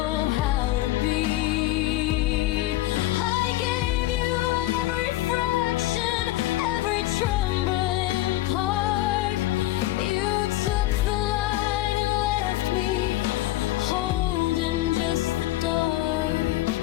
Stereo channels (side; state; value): right; quieter; 16.2 dB